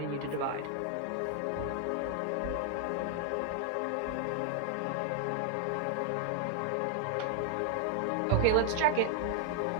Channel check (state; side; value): different; both; correlation 0.00